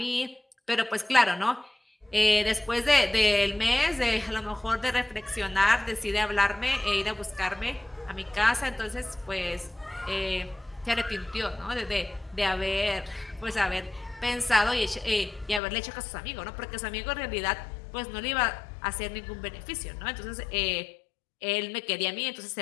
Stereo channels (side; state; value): right; drops out; at 15.6 s